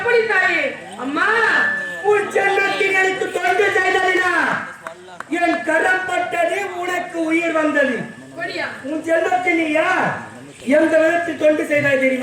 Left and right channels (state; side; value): identical; both; correlation 1.00